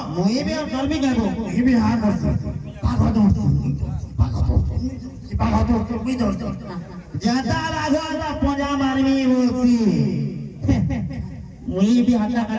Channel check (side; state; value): both; identical; correlation 1.00